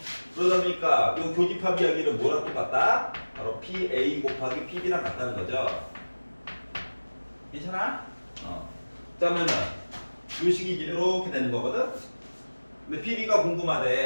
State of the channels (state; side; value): inverted; both; correlation -1.00